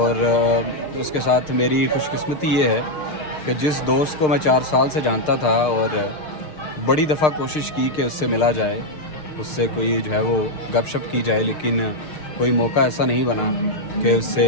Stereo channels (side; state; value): right; late; 6.5 ms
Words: उसके साथ मेरी खुशकिस्मती ये है कि जिस दोस्त को मैं 4 साल से जानता था और बड़ी दफ़ा कोशिश की कि उससे मिला जाए, उससे कोई जो है वो गपशप की जाए, लेकिन कोई मौका ऐसा नहीं बना कि उससे